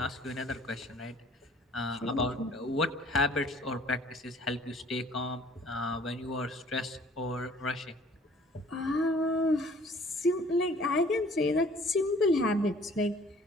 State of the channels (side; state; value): both; normal; correlation 0.54